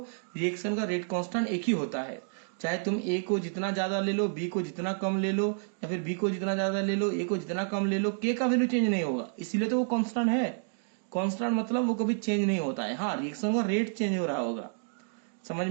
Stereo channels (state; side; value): silent; left; digital silence